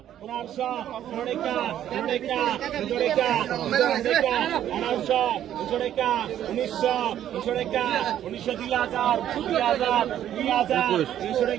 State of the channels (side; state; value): left; quieter; 11.1 dB